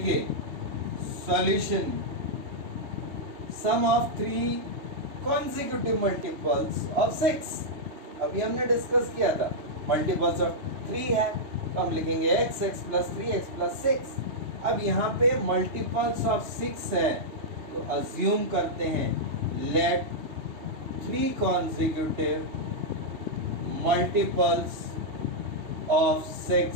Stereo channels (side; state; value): left; late; 3.2 ms